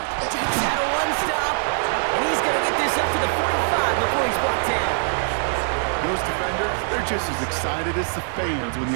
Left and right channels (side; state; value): left; silent; digital silence